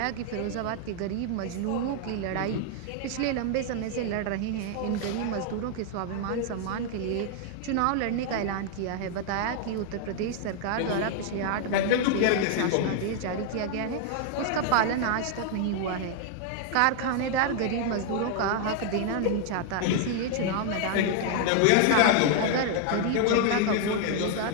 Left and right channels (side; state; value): both; different; correlation 0.00